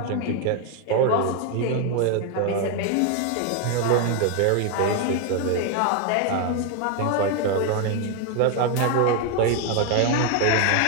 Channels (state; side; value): different; both; correlation 0.01